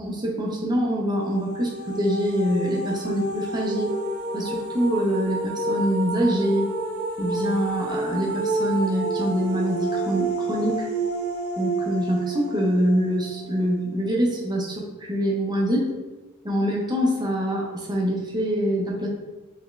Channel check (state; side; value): normal; both; correlation 0.67